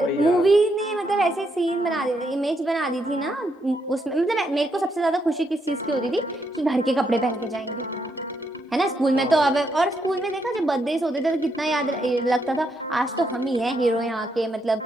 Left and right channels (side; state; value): both; normal; correlation 0.78